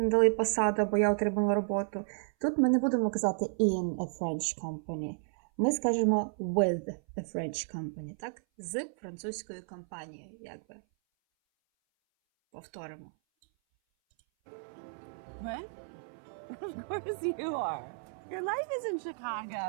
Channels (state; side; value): silent; left; 56 dB below the other